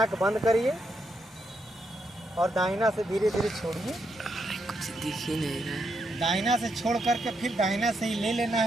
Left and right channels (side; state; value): both; normal; correlation 0.80